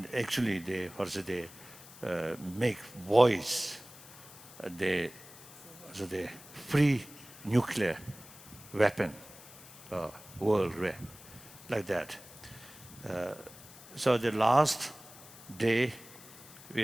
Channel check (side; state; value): left; noise; hiss, 18 dB below the sound